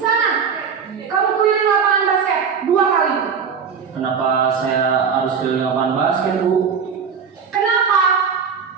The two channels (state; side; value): quieter; left; 6.4 dB